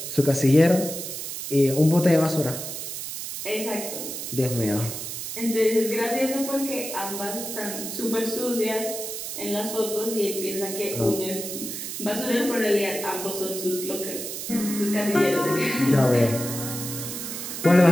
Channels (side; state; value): right; noise; hiss, 6 dB below the sound